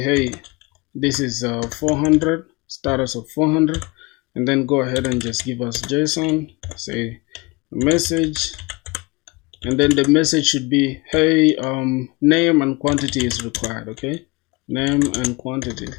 hey, this is 400, status of 400, and then go ahead and just give us JSON, say message, and then the message should be, hey, name and quantity is required. Okay, name and quantity.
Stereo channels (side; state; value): right; quieter; 25.1 dB